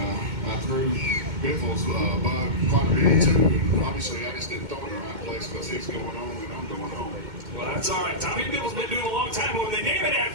I threw Biffle's bug quite a bit too. And obviously, I just didn't throw it in the right place because he's going home and I'm going home. Well, that's all right. Tommy Biffle's been doing a long time, but when they name it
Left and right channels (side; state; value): left; late; 2.2 ms